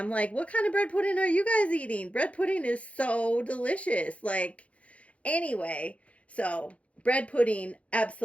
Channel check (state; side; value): late; right; 0.064 ms